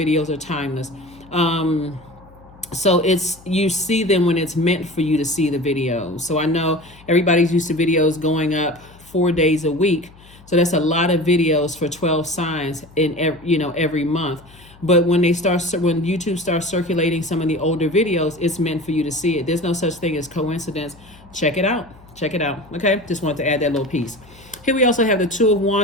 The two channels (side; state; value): left; noise; hum, 24 dB below the sound